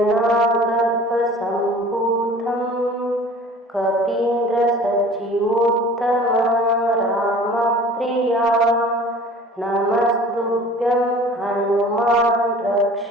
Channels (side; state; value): both; normal; correlation 0.45